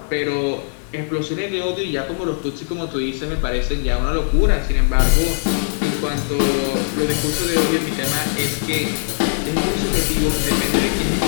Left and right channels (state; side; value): silent; right; 66 dB below the other